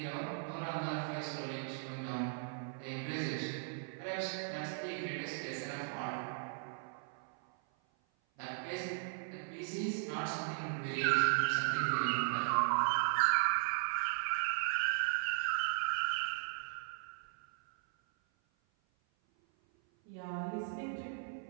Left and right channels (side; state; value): left; silent; 53 dB below the other